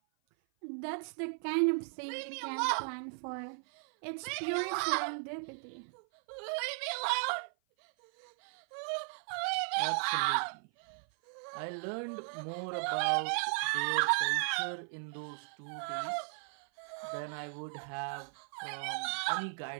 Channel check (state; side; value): silent; left; 53 dB below the other